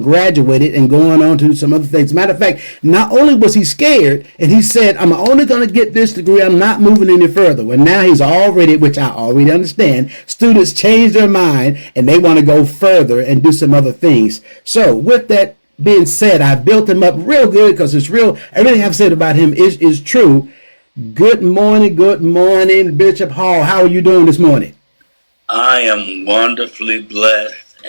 and going on to some other things. As a matter of fact, not only was he scared, and he said, I'm only going to get this degree, I'm not moving any further. Well, now he's already, which I already understand, students change their mind and they want to go further and do some other things. So with that being said, I built him up real good because it's real. Everything I've said about him is true. Good morning, Bishop Hall. How are you doing this morning? I am wonderfully blessed,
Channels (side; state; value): both; inverted; correlation -1.00